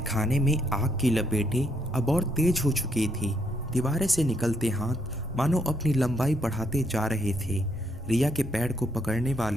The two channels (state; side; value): normal; both; correlation 0.74